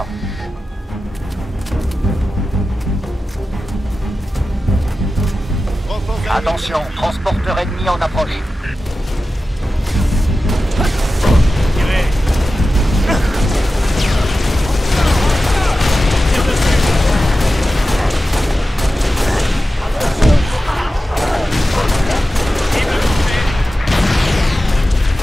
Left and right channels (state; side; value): normal; both; correlation 0.93